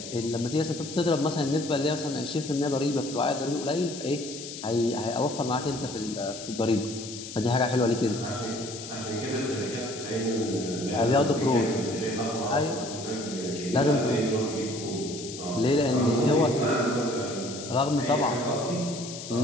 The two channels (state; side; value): noise; left; hiss, 11 dB below the sound